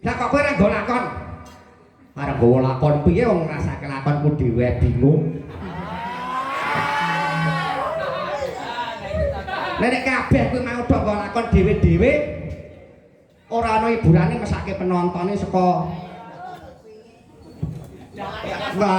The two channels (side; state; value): both; identical; correlation 1.00